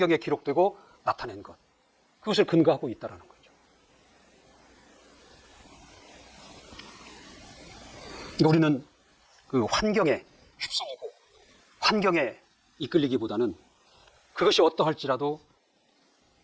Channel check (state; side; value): identical; both; correlation 1.00